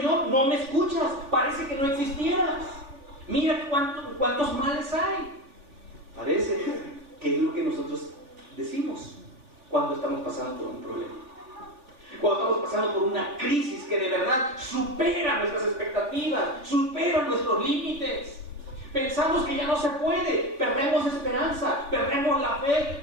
no me escuchas. Parece que no existieras. Mira cuántos males hay. Parece que es lo que nosotros decimos cuando estamos pasando por un problema. Cuando estamos pasando por una crisis que de verdad supera nuestras expectativas, supera nuestros límites. Pensamos que ya no se puede, perdemos esperanza, perdemos la fe,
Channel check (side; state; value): left; late; 3.4 ms